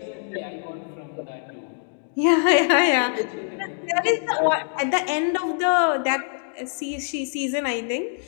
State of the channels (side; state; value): right; silent; digital silence